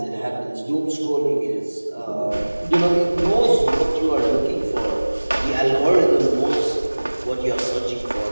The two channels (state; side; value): inverted; both; correlation -1.00